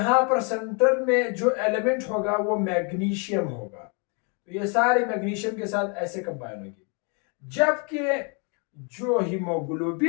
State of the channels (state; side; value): quieter; right; 36.3 dB